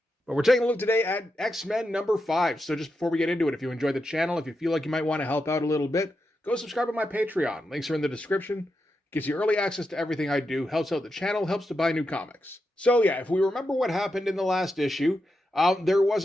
But we're taking a look today at X-Men number 5. So just before we get into it, if you enjoyed the channel, if you feel like you might want to help out a little bit, go subscribe to my Patreon. Links are in the description. Gives you early access to everything I do, helps out the channel, helps to buy new comics. So yeah, if we remember what happened in the last issue, there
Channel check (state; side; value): normal; both; correlation 0.87